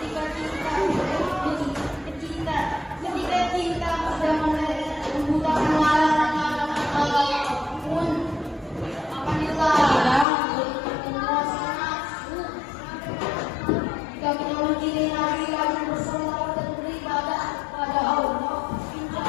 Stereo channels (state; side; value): drops out; right; at 10.2 s